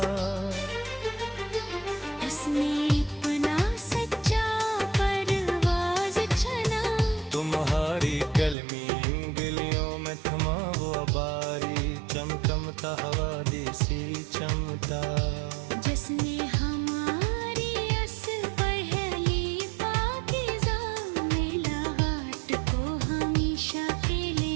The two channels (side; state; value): left; drops out; at 8.6 s